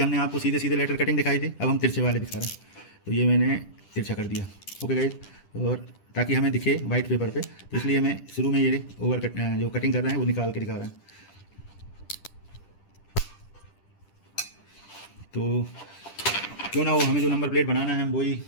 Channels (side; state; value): right; late; 10 ms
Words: आपको सीधे सीधे लेटर कटिंग दिखाई थी, अब हम तिरछे वाले दिखा रहे हैं। तो ये मैंने तिरछा कर दिया। ओके गाइज, और ताकि हमें दिखे वाइट पेपर पे, तो इसलिए मैं शुरू में ये जो कटिंग कर रहे हैं वो निकाल के दिखा रहे हैं। तो क्यों ना हो, हमें जो नंबर प्लेट बनाना है हम वही